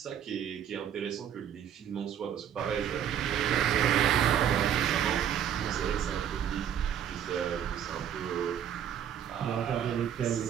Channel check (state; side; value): quieter; left; 9.3 dB